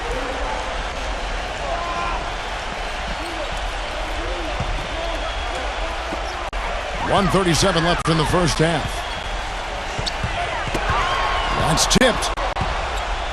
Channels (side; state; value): both; identical; correlation 1.00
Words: .137 left in the first half. That's tipped.